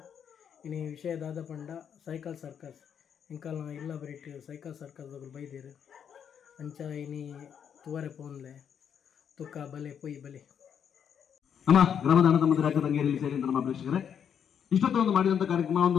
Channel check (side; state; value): right; quieter; 8.1 dB